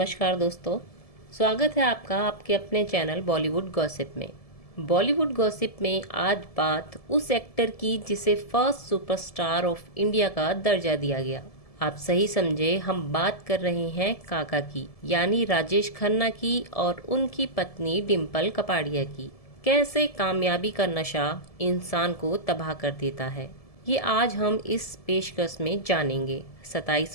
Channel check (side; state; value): right; late; 1.7 ms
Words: दोस्तों, स्वागत है आपका आपके अपने चैनल बॉलीवुड गॉसिप में। बॉलीवुड गॉसिप में आज बात उस एक्टर की जिसे फर्स्ट सुपरस्टार ऑफ इंडिया का दर्जा दिया गया। आप सही समझे, हम बात कर रहे हैं काका की, यानी राजेश खन्ना की और उनकी पत्नी डिम्पल कपाड़िया की। कैसे कामयाबी का नशा इंसान को तबाह कर देता है, ये आज हम इस पेशकश में जानेंगे।